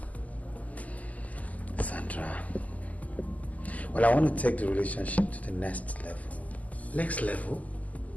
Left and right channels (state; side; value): late; right; 0.075 ms